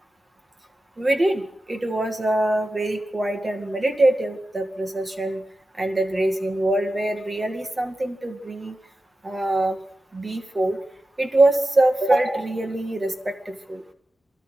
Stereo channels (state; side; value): normal; both; correlation 0.93